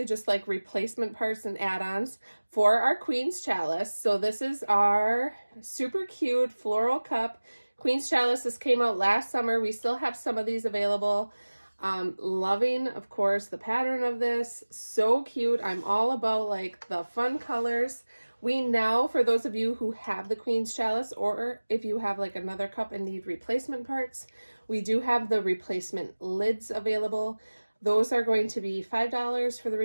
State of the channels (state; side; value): inverted; both; correlation -1.00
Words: just like replacement parts and add-ons for our Queens Chalice. So this is our super cute floral cup. Queens Chalice, this came out last summer. We still have some of these available. Loving, of course, the pattern of this. So cute. I'm all about like the fun colors. We now, for those of you who have the Queens Chalice, or if you have like another cup and need replacement parts, we do have the replacement lids available. Those are going to be $5 for the